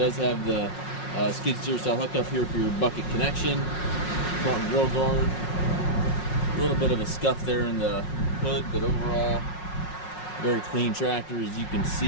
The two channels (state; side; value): late; right; 5.5 ms